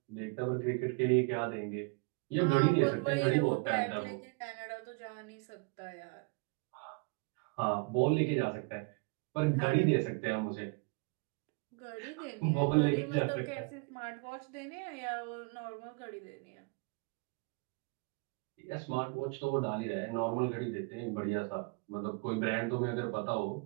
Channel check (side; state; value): left; quieter; 30.8 dB